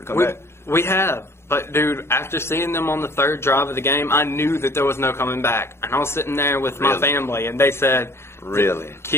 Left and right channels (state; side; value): late; right; 0.12 ms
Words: come back. We have. But, dude, after seeing them on the third drive of the game, I knew that there was no coming back. And I was sitting there with my family, and they said, really?